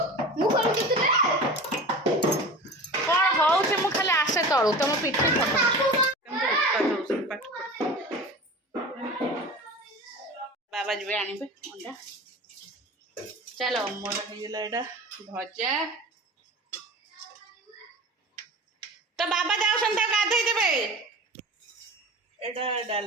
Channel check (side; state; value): both; normal; correlation 0.35